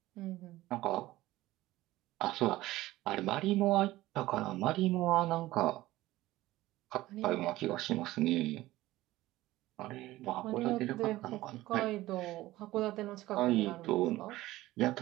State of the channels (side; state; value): left; quieter; 17.0 dB